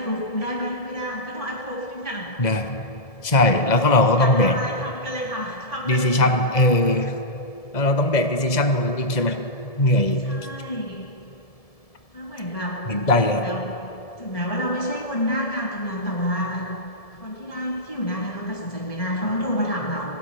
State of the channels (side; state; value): right; late; 1.7 ms